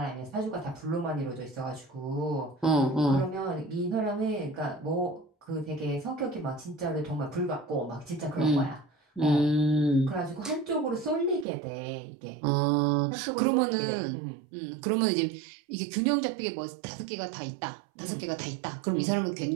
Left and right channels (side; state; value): left; drops out; at 11.5 s